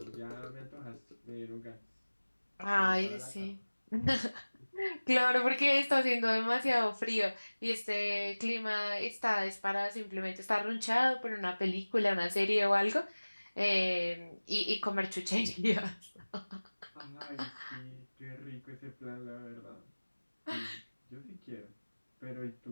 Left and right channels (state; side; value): inverted; both; correlation -1.00